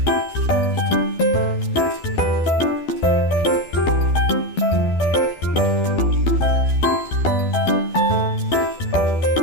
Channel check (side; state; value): right; late; 12 ms